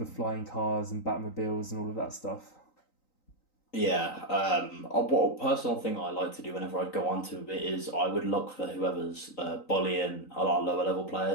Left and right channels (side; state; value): right; late; 3.9 ms